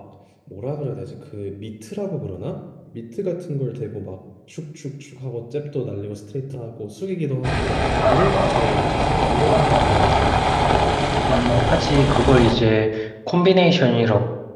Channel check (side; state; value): both; identical; correlation 1.00